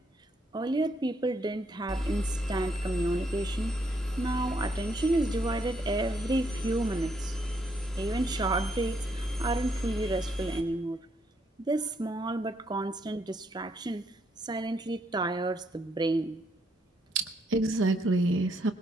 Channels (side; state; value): both; normal; correlation 0.74